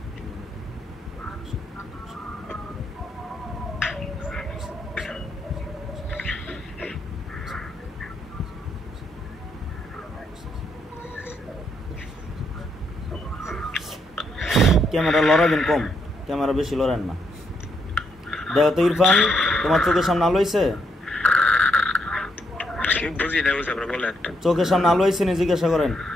ক্যামেরা লড়াবেন কম, ক্যামেরা বেশি লড়েন না। দেখো তো ইরফান, তোমার চোখের সামনে আলো হয়েছে? বুঝি না, বুঝে আপনারা বলেন। চোখের সামনে আলো হয়েছে নি জিজ্ঞাসা করেন।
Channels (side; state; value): both; normal; correlation 0.76